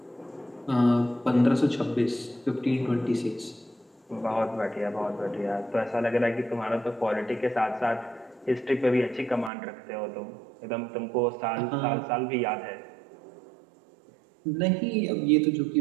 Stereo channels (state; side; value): drops out; left; at 9.5 s